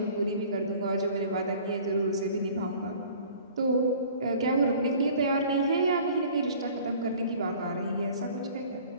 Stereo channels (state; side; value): inverted; both; correlation -0.49